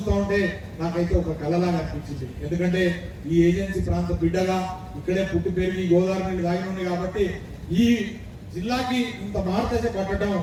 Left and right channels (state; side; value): identical; both; correlation 1.00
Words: ఉంటే నాకైతే ఒక కళలాగా అనిపించింది. ఎందుకంటే ఈ ఏజెన్సీ ప్రాంత బిడ్డగా ఇక్కడే పుట్టి పెరిగి గోదావరి నీళ్ళు దాగి ఉంది కాబట్టి ఈ జిల్లాకి ఇంత మార్గదశ పట్టడం